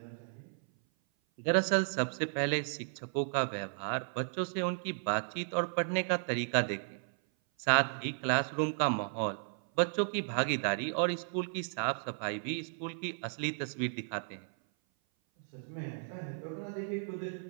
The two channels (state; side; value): silent; left; 55 dB below the other